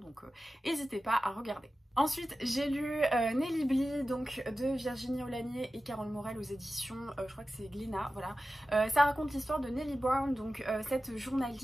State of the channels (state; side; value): normal; both; correlation 0.94